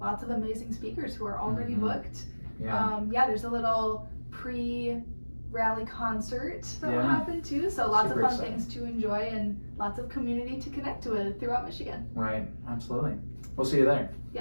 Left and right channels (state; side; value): inverted; both; correlation -1.00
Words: lots of amazing speakers who are already booked. Yeah. There's a little pre-rally concert that will Yeah. happen too. So lots Super of fun exciting. things to enjoy and lots of community to connect with throughout Michigan. Right. Absolutely. We'll see you there.